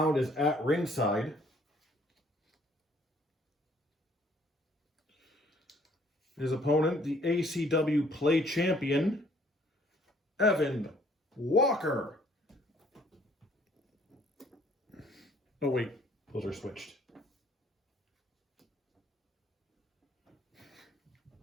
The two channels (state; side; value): normal; both; correlation 0.61